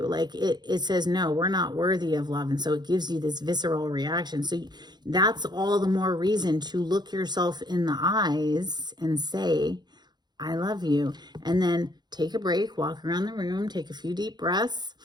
Like it says, no, we're not worthy of love. And so it gives you this visceral reaction. So that's all the more reason to look yourself in the eyes and say, I love you. And then take a break, walk around the room, take a few deep breaths,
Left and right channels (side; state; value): left; late; 0.21 ms